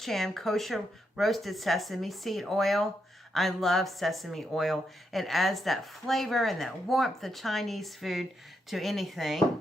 Chan Kosher Roasted Sesame Seed Oil. I love sesame oil. It adds that flavor and that warmth of Chinese food to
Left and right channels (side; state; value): both; normal; correlation 0.82